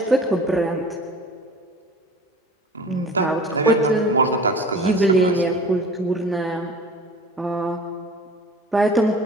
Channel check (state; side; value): normal; both; correlation 0.42